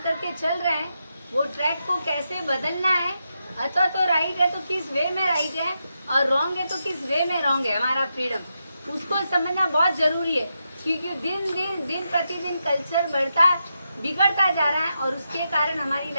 करके चल रहे हैं वो ट्रैक को कैसे बदलना है, अथवा तो राइट है तो किस वे में राइट है और रॉन्ग है तो किस वे में रॉन्ग है हमारा फ्रीडम, उसको समझना बहुत जरूरी है। क्योंकि दिन प्रतिदिन कल्चर बिगड़ता जा रहा है और उसके कारण हमारी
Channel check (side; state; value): both; inverted; correlation -0.85